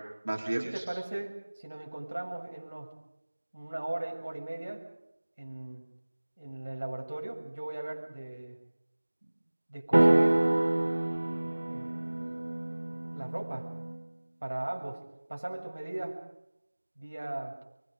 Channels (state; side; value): inverted; both; correlation -1.00